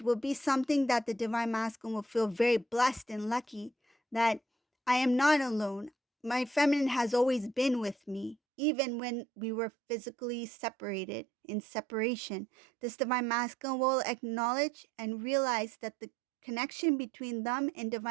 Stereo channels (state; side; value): drops out; left; at 8.3 s